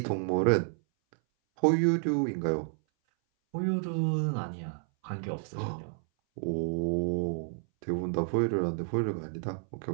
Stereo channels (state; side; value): silent; left; 58 dB below the other